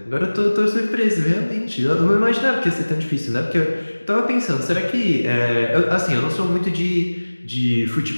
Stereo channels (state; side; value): inverted; both; correlation -1.00